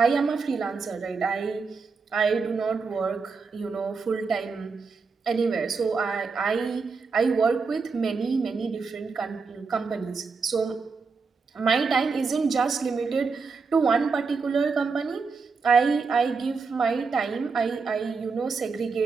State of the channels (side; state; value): left; quieter; 4.8 dB